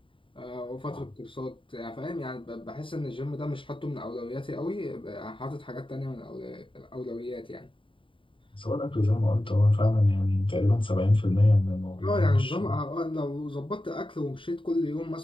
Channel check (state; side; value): late; right; 0.25 ms